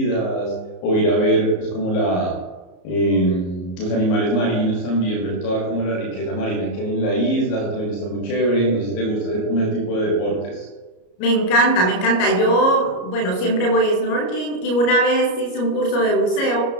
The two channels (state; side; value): late; right; 33 ms